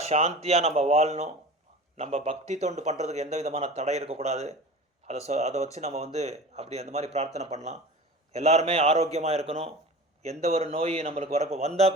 சாந்தியாக நம்ம வாழணும். நம்ம பக்தி தொண்டு பண்ணுறதுக்கு எந்த விதமான தடை இருக்கக்கூடாது. அதை வச்சு நம்ம வந்து அப்படி அந்த மாதிரி பிரார்த்தனை பண்ணலாம். எல்லாருமே ஆரோக்கியமாக இருக்கணும். எந்த ஒரு நோய் நம்மளுக்கு வரப்போ வந்தால்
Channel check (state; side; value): normal; both; correlation 0.36